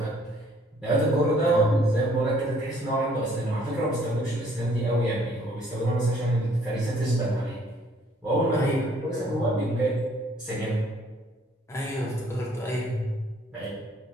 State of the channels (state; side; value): normal; both; correlation 0.61